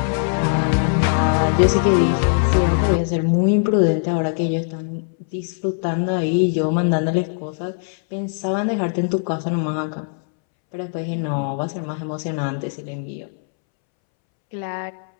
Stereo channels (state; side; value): silent; right; 64 dB below the other